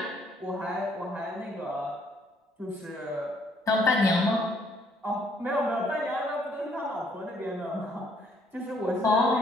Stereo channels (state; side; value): normal; both; correlation 0.66